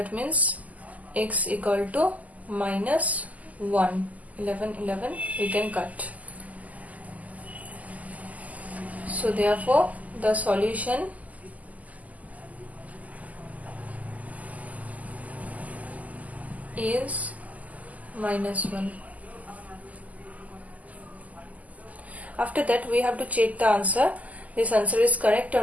means x equal to minus 1. 11 we can cut. So therefore the solution is minus 1. After that we have to check the answer, this answer is correct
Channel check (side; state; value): left; late; 0.076 ms